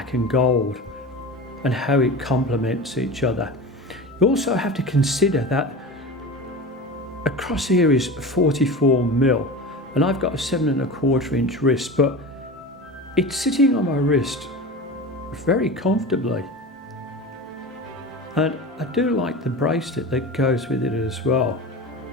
and gold and how it complements each other. You also have to consider that across here is 44mm, and I've got a 7¼ inch wrist, but it's sitting on my wrist very comfortably. And I do like the bracelet that goes with it as well.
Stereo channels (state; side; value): normal; both; correlation 0.30